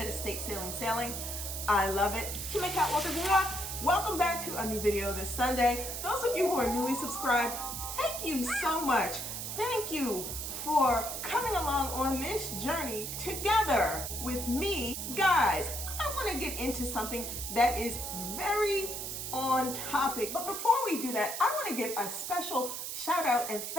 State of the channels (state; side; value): noise; right; hiss, 5 dB below the sound